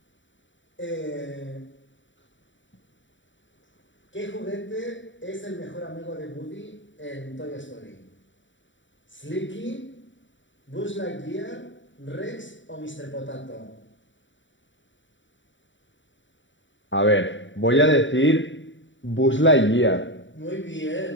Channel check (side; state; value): right; late; 0.55 ms